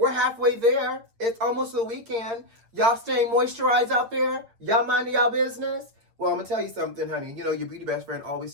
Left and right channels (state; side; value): late; left; 8.9 ms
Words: halfway there. It's almost the weekend. Y'all staying moisturized out there? Y'all minding y'all business? Well, I'm going to tell you something, honey. You know, your beauty best friend always